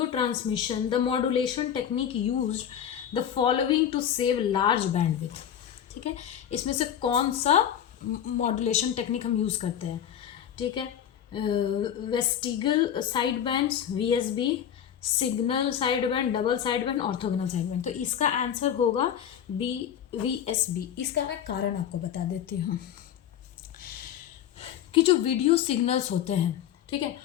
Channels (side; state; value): right; quieter; 9.6 dB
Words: transmission the modulation technique used the following to save large bandwidth, ठीक है, इसमें से कौन सा मॉड्यूलेशन टेक्निक हम यूज़ करते हैं, ठीक है, vestigial side bands, VSB, signal side band, double side band, orthogonal side band, तो इसका आंसर होगा बी, वीएसबी। इसका मैं कारण आपको बता देती हूँ कि जो वीडियो सिग्नल्स होते हैं, ठीक है,